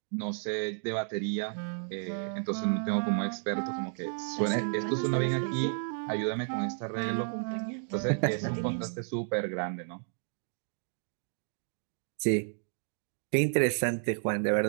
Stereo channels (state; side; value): silent; left; 56 dB below the other